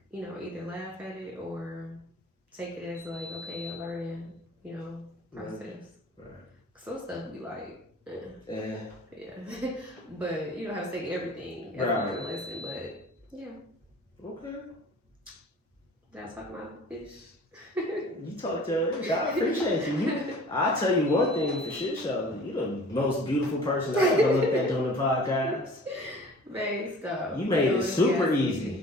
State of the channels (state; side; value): normal; both; correlation 0.45